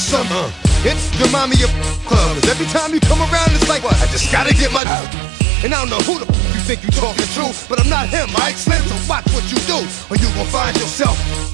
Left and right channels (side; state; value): left; drops out; at 4.8 s